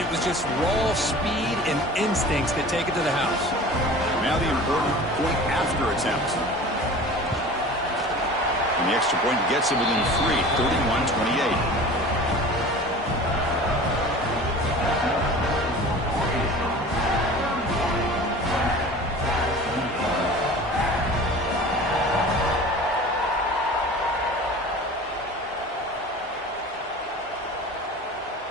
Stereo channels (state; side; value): normal; both; correlation 0.40